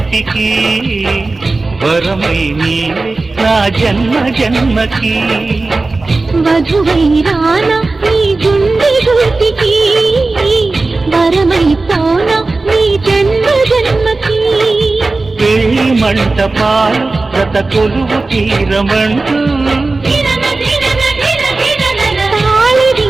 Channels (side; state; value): left; quieter; 3.4 dB